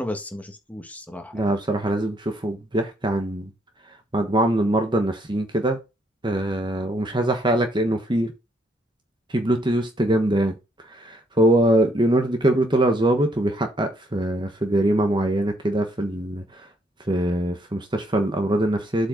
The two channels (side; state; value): both; normal; correlation 0.71